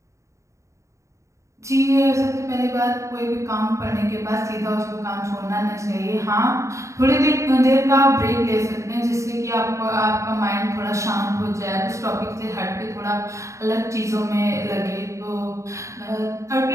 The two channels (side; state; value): left; late; 0.15 ms